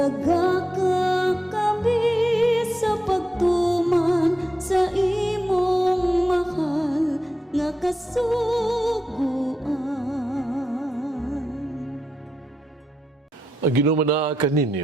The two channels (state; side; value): normal; both; correlation 0.87